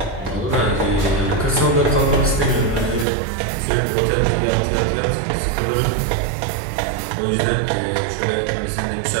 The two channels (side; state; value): left; drops out; at 3.1 s